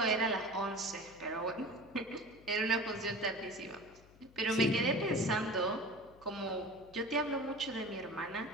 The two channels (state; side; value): noise; left; hum, 25 dB below the sound